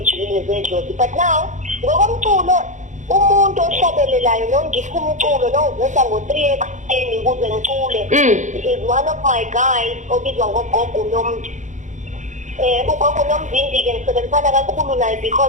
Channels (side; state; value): left; late; 0.35 ms